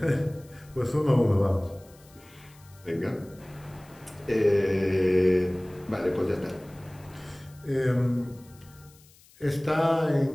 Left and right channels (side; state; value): left; noise; hiss, 27 dB below the sound